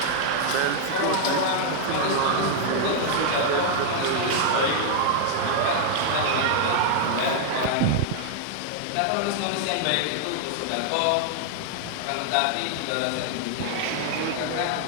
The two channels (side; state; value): both; different; correlation 0.00